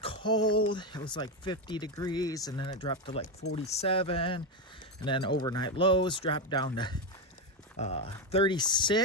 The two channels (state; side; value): normal; both; correlation 0.09